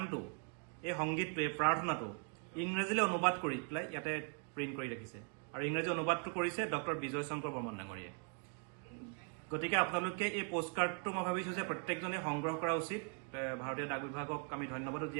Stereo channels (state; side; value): quieter; left; 39.4 dB